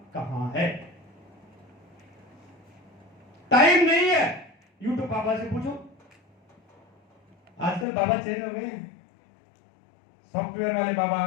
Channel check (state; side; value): drops out; right; at 7.9 s